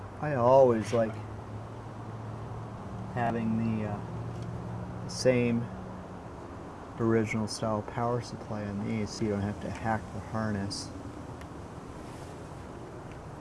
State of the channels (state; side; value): identical; both; correlation 1.00